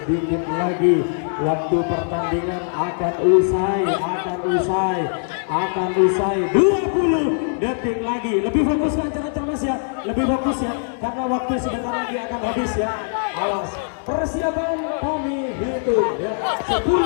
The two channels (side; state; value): right; silent; digital silence